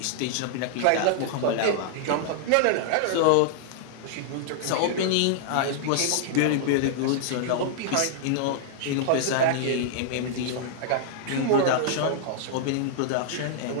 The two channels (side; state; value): both; different; correlation -0.01